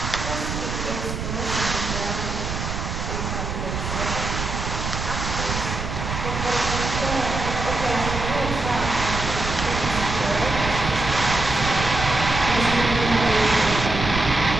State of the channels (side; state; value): right; noise; rumble, 4 dB below the sound